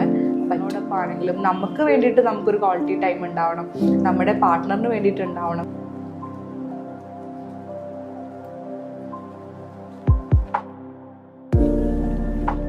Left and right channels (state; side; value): identical; both; correlation 1.00